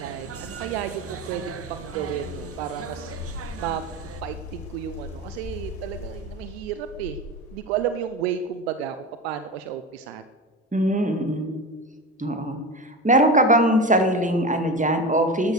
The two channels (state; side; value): normal; both; correlation 0.26